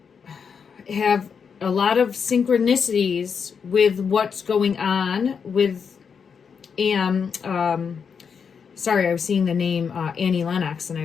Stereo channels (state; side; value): quieter; right; 6.4 dB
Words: have a lot of synchronicities with what's going on with sorry, I was seeing the name Annie Lennox, and